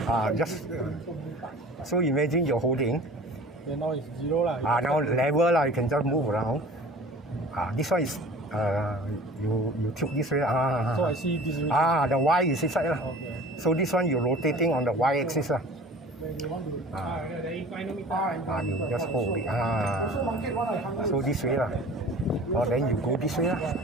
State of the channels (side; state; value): both; normal; correlation 0.43